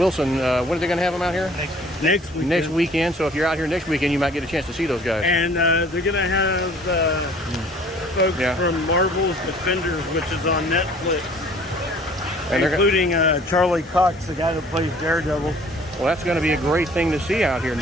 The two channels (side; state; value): both; normal; correlation 0.53